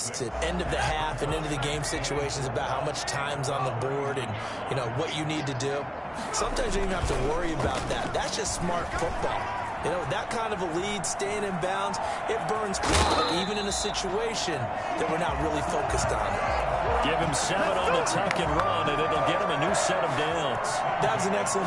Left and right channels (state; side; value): identical; both; correlation 1.00